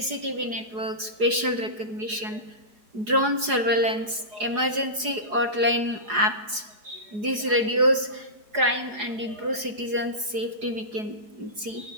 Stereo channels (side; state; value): left; late; 4.8 ms